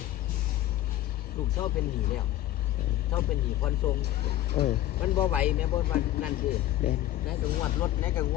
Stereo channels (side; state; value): right; quieter; 13.8 dB